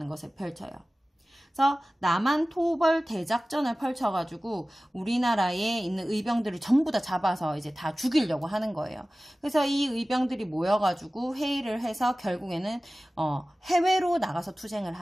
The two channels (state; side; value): normal; both; correlation 0.97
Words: 것을 펼쳐요. 그래서 남한 토벌 대작전을 펼쳐가지고 우리나라에 있는 의병들을 전부 다 잡아서 이제 다 죽이려고 하는 거예요. 그래서 이 의병들이 모여가지고 회의를 해서 결국에는 해외로 나가서 투쟁을